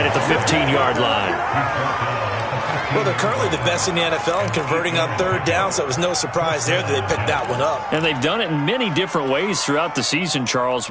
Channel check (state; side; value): identical; both; correlation 1.00